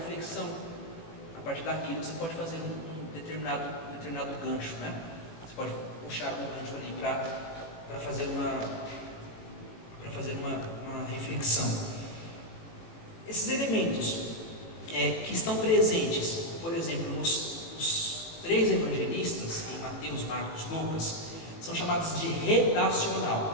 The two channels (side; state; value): right; late; 18 ms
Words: A partir daquilo você pode fazer um determinado gancho, né? Você pode puxar um gancho ali para fazer uma reflexão. Esses elementos que estão presentes, por exemplo, nos 3 evangelistas, em Mateus, Marcos, Lucas, são chamados de